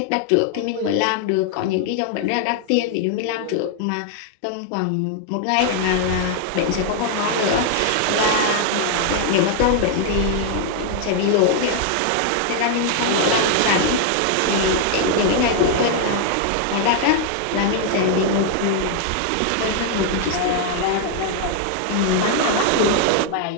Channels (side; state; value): both; different; correlation 0.00